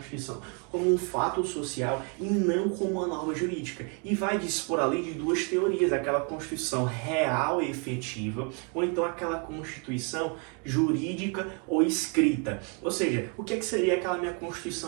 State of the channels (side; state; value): left; quieter; 36.6 dB